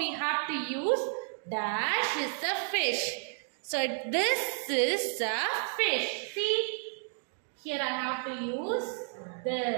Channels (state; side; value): silent; left; 57 dB below the other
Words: have to use dash is a fish. So this is a fish. See, here I have to use